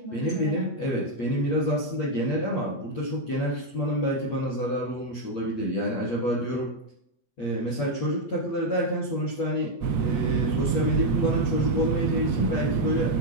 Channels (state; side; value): late; right; 8.3 ms